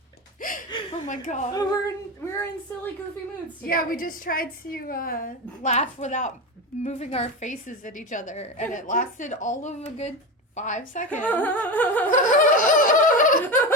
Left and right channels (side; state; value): both; normal; correlation 0.20